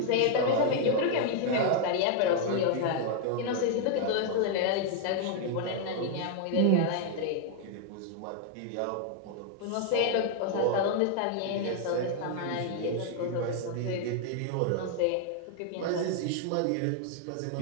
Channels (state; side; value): different; both; correlation 0.00